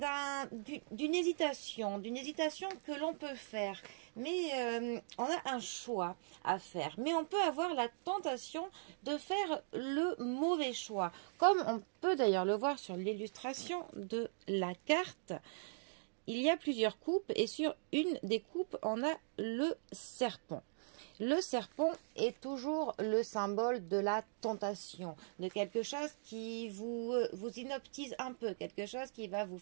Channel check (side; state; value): left; silent; digital silence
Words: d'une hésitation que l'on peut faire. Mais on a un choix à faire. Mais on peut avoir la tentation de faire le mauvais choix. Comme on peut d'ailleurs le voir sur l'illustration de la carte. Il y a plusieurs coupes et sur une des coupes, on a le serpent. Le serpent est toujours le symbole de la tentation, de quelque chose qui vous inoptise un peu, quelque chose qui va vous